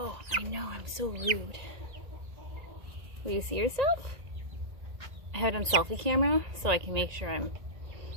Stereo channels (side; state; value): left; late; 1.9 ms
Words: I know, I'm so rude. Will you see yourself? I have it on selfie camera so I can make sure I'm